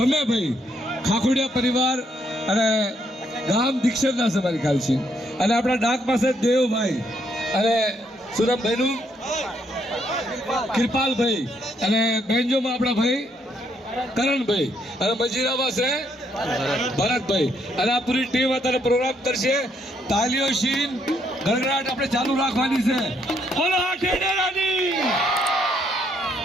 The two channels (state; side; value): normal; both; correlation 0.73